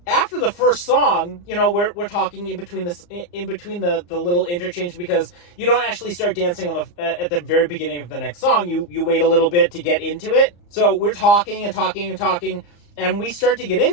After the first song, we're talking in between the little interchange, because you don't actually start dancing at the very beginning of the next song. You wait a little bit to get into it. So we're talking and talking and talking, and we start to get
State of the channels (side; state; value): right; late; 34 ms